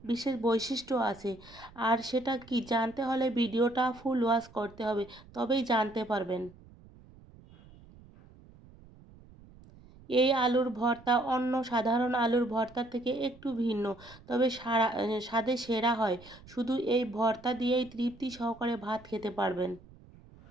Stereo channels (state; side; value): noise; right; rumble, 23 dB below the sound